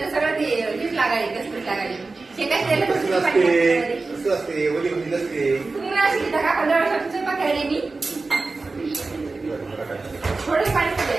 सगळं ते हीच लागायली कसं लागायली शेकाय तेल तुम्ही अशी का 15 वर्षापासून पकडले मी थोडे पाणी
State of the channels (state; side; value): quieter; left; 3.7 dB